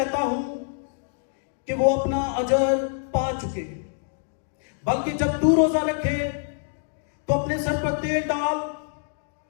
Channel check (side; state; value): right; silent; digital silence